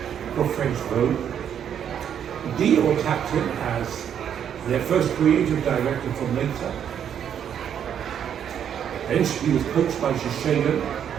for French Vogue. Dior tapped him as their first creative director for later. Then he was coached by Shiseido.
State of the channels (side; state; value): left; quieter; 8.9 dB